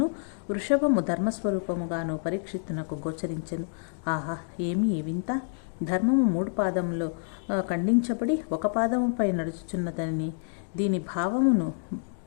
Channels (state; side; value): silent; right; digital silence